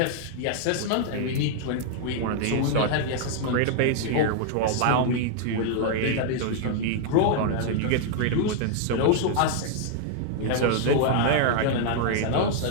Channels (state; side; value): different; both; correlation 0.00